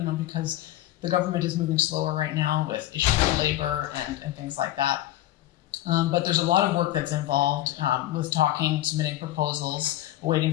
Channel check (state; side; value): quieter; right; 14.7 dB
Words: because the government is moving slower right now with issues of labor and things like that. But there's a lot of work that's involved with talking, submitting proposals, waiting